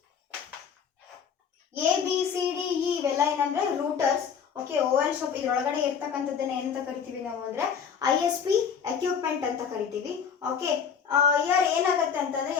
C, D, E ಇವೆಲ್ಲ ಏನಂದ್ರೆ routers. Okay, Oval shop ಇದರೊಳಗಡೆ ಇರ್ತಕ್ಕಂಥದ್ದನ್ನ ಏನಂತ ಕರಿತೀವಿ ನಾವು ಅಂದ್ರೆ ISP equipment ಅಂತ ಕರಿತೀವಿ. ಓಕೆ, ಇಯರ್ ಏನಾಗುತ್ತೆ ಅಂತಂದ್ರೆ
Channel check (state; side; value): quieter; right; 7.1 dB